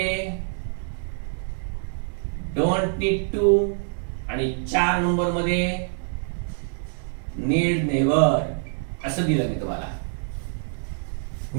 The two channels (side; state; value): left; silent; digital silence